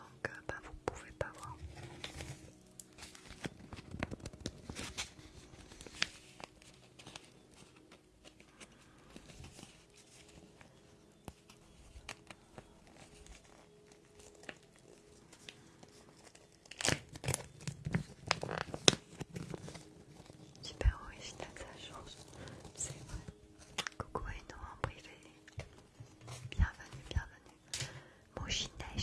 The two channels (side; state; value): both; identical; correlation 1.00